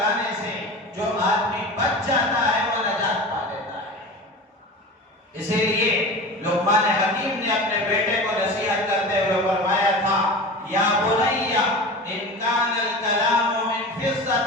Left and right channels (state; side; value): normal; both; correlation 0.32